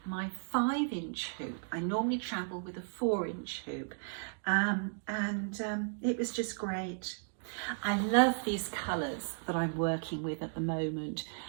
my 5-inch hoop. I normally travel with a 4-inch hoop, and it was just great. I love these colours that I'm working with at the moment.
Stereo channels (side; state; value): left; silent; digital silence